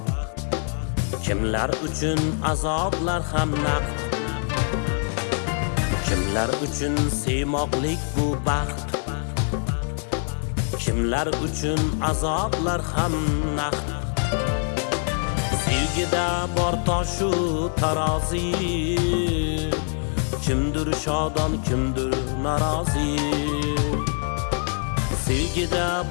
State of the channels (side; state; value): right; silent; 62 dB below the other